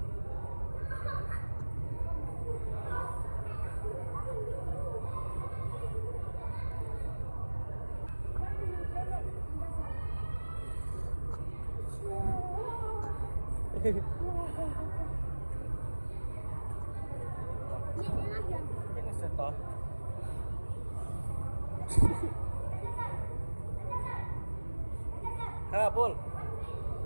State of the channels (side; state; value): both; inverted; correlation -1.00